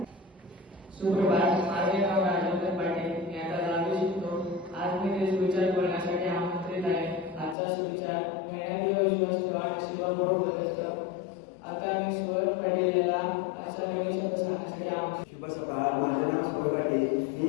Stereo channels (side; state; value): right; drops out; at 7.6 s